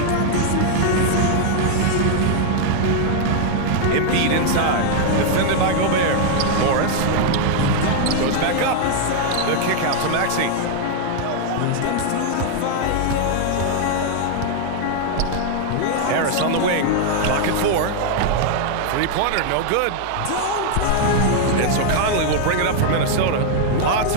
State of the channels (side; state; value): both; different; correlation 0.00